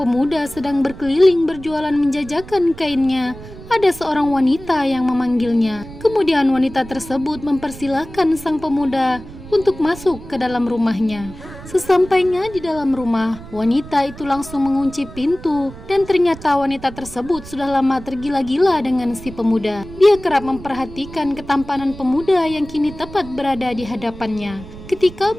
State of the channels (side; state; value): right; noise; rumble, 15 dB below the sound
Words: sedang berkeliling berjualan menjajakan kainnya, ada seorang wanita yang memanggilnya. Kemudian wanita tersebut mempersilahkan sang pemuda untuk masuk ke dalam rumahnya. Sesampainya di dalam rumah, wanita itu langsung mengunci pintu, dan ternyata wanita tersebut sudah lama tergila-gila dengan si pemuda. Dia kerap memperhatikan ketampanan pemuda yang kini tepat berada di hadapannya. Ketika